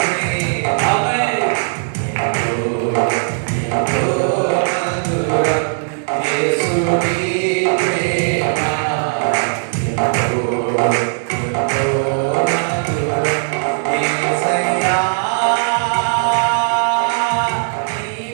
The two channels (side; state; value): left; silent; 63 dB below the other